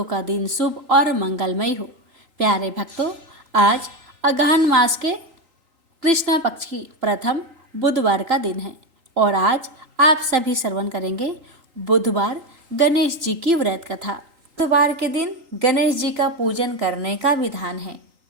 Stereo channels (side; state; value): left; late; 3.8 ms